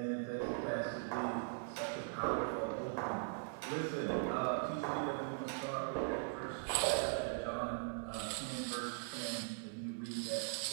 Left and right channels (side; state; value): left; silent; digital silence